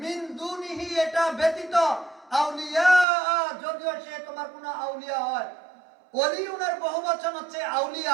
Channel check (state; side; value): drops out; left; at 3.1 s